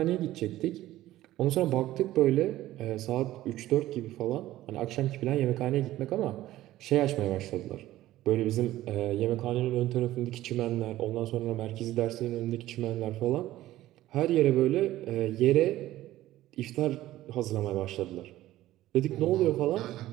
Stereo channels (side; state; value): left; quieter; 15.0 dB